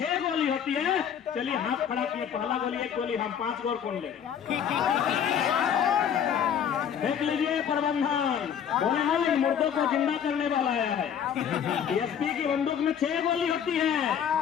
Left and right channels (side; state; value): right; quieter; 8.4 dB